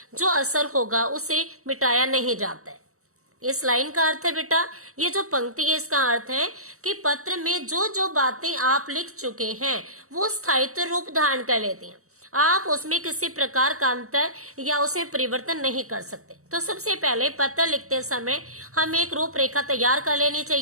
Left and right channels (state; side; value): late; left; 0.64 ms